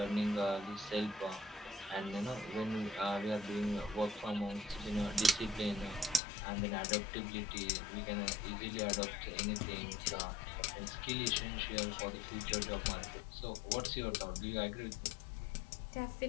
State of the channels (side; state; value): right; drops out; at 6.2 s